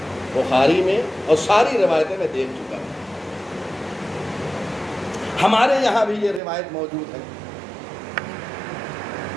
بخاری میں، اور ساری روایتیں میں دیکھ چکا ہوں. ہمارے یہاں بھی یہ روایت موجود ہے.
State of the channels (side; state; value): left; drops out; at 6.4 s